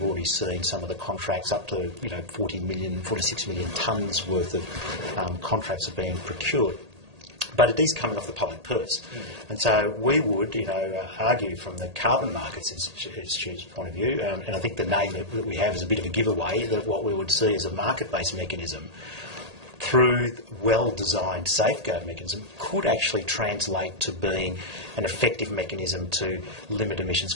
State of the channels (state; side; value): late; left; 1.8 ms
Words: already seen some of the contracts up to 46 million tonnes worth of contracts are being procured. But it is coming off the public purse. And so we would, argue from the Carbon Markets Institute's point of view, and I think the name that we have is a bit of a giveaway, that what we would see as a market-based mechanism through well-designed safeguard mechanism could actually translate to being an effective mechanism to limit emissions